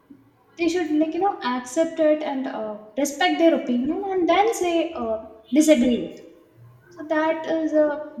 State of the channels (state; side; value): identical; both; correlation 1.00